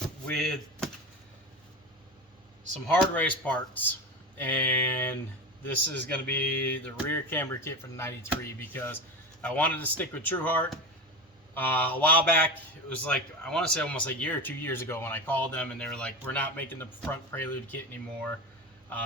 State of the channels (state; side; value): normal; both; correlation 0.23